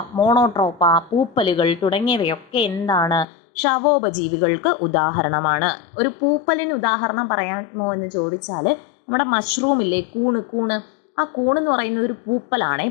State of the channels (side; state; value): right; drops out; at 3.2 s